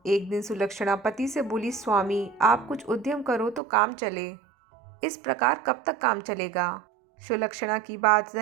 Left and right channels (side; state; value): left; drops out; at 3.6 s